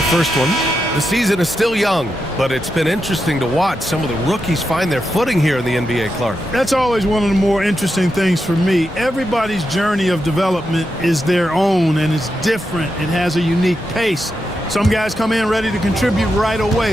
first one. The season is still young, but it's been interesting to watch some of the rookies find their footing here in the NBA, Clark. That's always one of the more interesting things for me. Everybody's journey of development is their own, and it's different. It has a unique pace. Some guys come in ready to contribute right away.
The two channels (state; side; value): normal; both; correlation 0.86